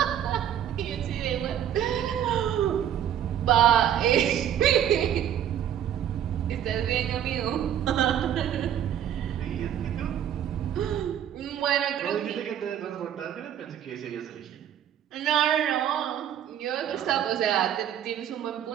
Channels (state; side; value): quieter; left; 10.2 dB